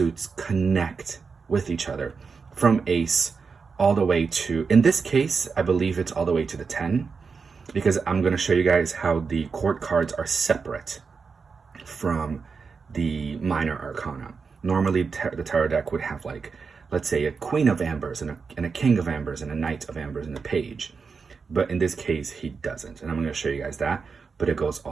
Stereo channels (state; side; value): quieter; left; 5.2 dB